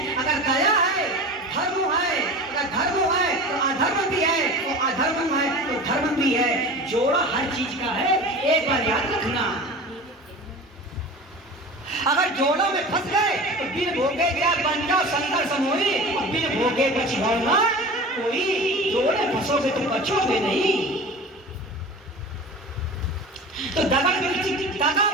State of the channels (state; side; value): normal; both; correlation 0.35